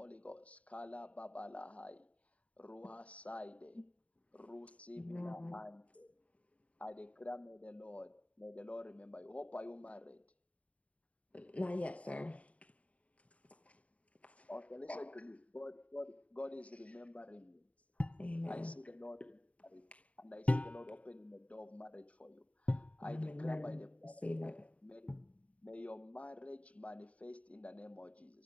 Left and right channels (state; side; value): late; right; 0.066 ms